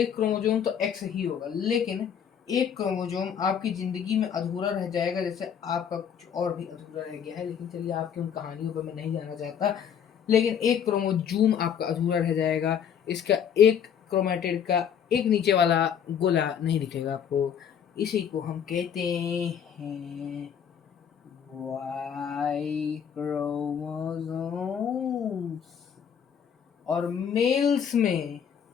क्रोमोसोम तो एक्स ही होगा, लेकिन एक क्रोमोसोम आपकी जिंदगी में अधूरा रह जाएगा, जैसे आपका कुछ और भी अधूरा रह गया है। लेकिन चलिए आपकी उन कहानियों पर मैं नहीं जाना चाहता। लेकिन एक क्रोमोजोम आपका अधूरा रह जाएगा, इसका एक क्रोमेटिड का एक नीचे वाला गोला नहीं दिखेगा आपको। इसी को हम कहते हैं वाई क्रोमोसोम्स। और मेल्स में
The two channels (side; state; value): right; quieter; 8.1 dB